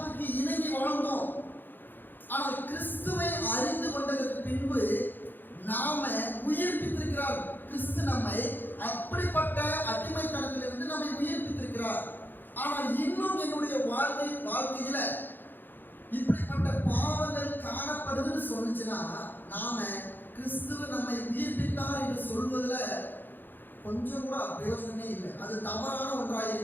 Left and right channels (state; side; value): late; right; 0.092 ms